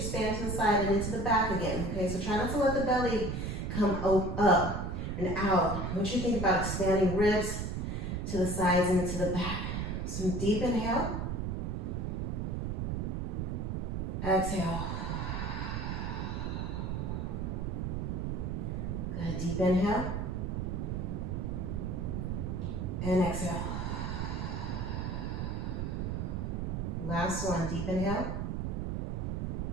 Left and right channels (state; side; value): noise; right; rumble, 1 dB below the sound